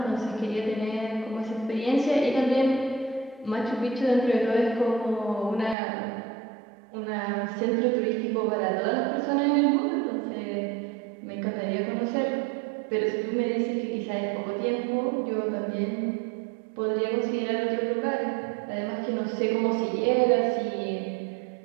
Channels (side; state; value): left; drops out; at 5.8 s